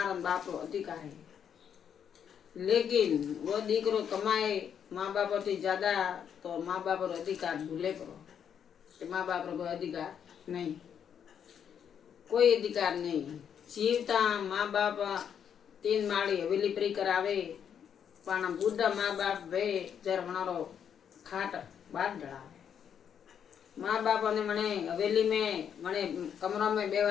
बापरो अधिकार है। लेकिन वो दीकरो कमाए माँ बाप थी ज्यादा तो माँ बाप रो अधिकार भूले करो कि माँ बाप रो कोई अधिकार नहीं, कोई अधिकार नहीं। जीवता माँ बाप 3 माળી हवेली परी करावे पण बुढ़ा माँ बाप वे जर मनारो खाट बार डरावे। माँ बाप ने मने हवेली में मने कमरा में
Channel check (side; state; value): right; quieter; 8.2 dB